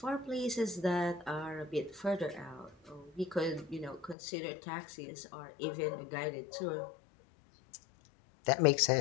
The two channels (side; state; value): right; drops out; at 4.2 s